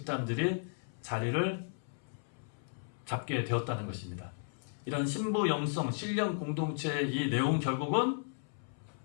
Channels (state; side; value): silent; right; 55 dB below the other